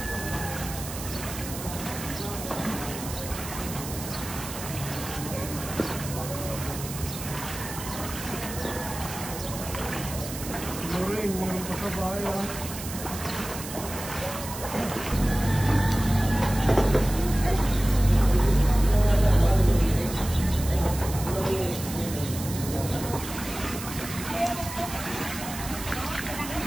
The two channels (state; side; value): noise; right; hiss, 10 dB below the sound